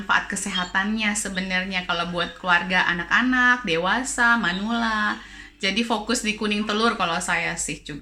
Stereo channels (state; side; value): identical; both; correlation 1.00